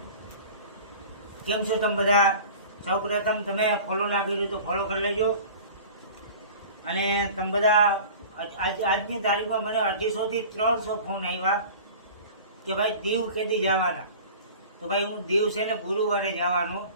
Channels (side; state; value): both; inverted; correlation -0.40